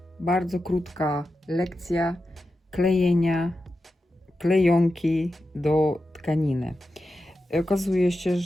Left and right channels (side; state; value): both; normal; correlation 0.91